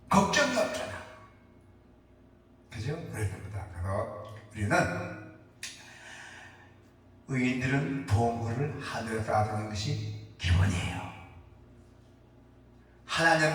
걱정이 없잖아. 그죠? 그렇습니다. 그래서 우리는 의인들은 보물을 하늘에 쌓아두는 것이 기본이에요.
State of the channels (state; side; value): identical; both; correlation 1.00